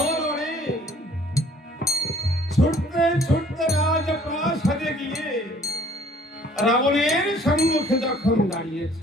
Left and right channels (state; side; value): normal; both; correlation 0.56